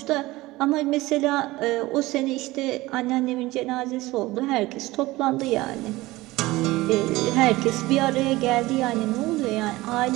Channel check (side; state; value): left; quieter; 19.3 dB